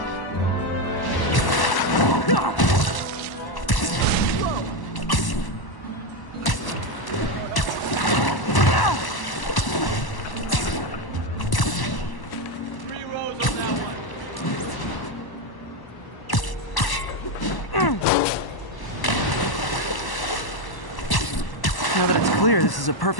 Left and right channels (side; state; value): right; late; 1.1 ms